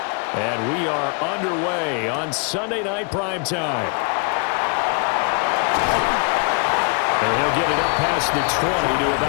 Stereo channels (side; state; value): right; quieter; 36.5 dB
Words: And we are underway on Sunday Night Primetime. And he'll get it up past the 20 to